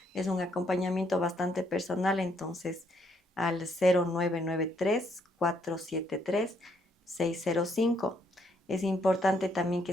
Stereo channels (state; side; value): normal; both; correlation 0.71